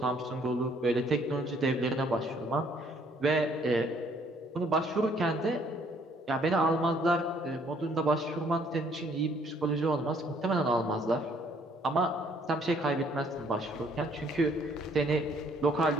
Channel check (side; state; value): both; normal; correlation 0.63